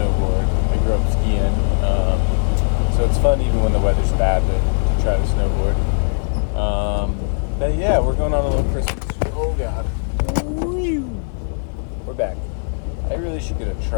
I grew up skiing, so it's fun even when the weather's bad to try to snowboard. But yeah, we're going on a little Christmas. Oh God. We're back. I really should get a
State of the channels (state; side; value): silent; right; 57 dB below the other